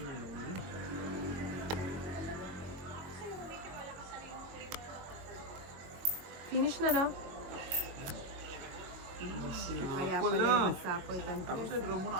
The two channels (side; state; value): left; late; 22 ms